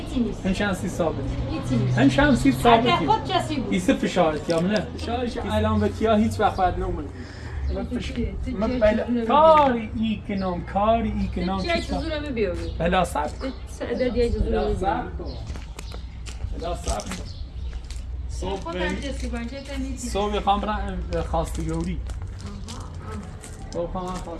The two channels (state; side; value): identical; both; correlation 1.00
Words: هن شانسی ثابتی ایسه فشارت یا منه الان به تیا هیچ وقت باید نمونه کاری ای کنم بلا صبر صبح خواهم برم خواستگاری